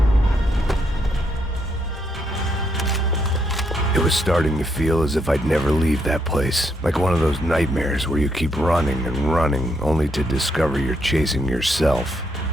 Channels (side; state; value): both; normal; correlation 0.76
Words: It was starting to feel as if I'd never leave that place. Like one of those nightmares where you keep running and running, only to discover you're chasing yourself.